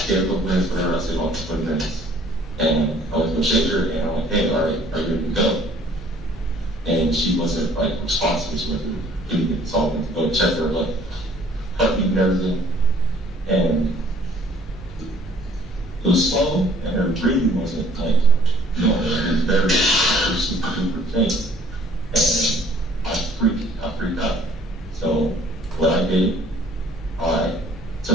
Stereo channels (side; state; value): both; normal; correlation 0.57